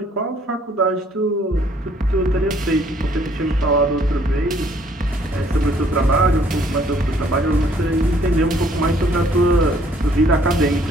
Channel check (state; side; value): normal; both; correlation 0.62